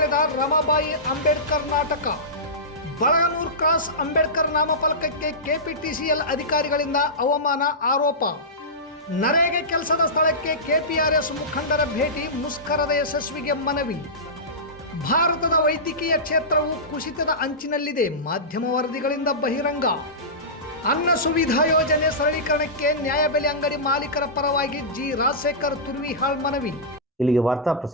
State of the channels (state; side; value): normal; both; correlation -0.17